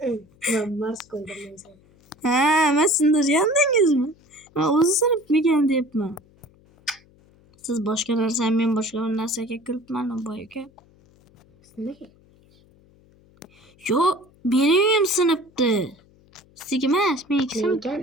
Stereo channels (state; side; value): noise; left; hum, 30 dB below the sound